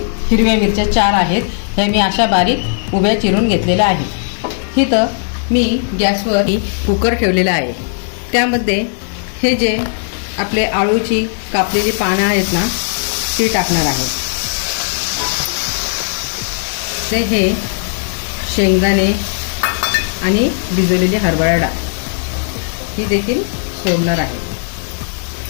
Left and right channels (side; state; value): right; silent; digital silence